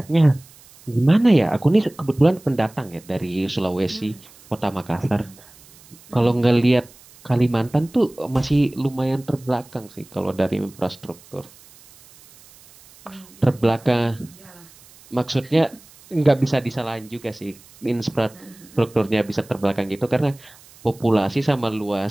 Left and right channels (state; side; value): noise; right; hiss, 24 dB below the sound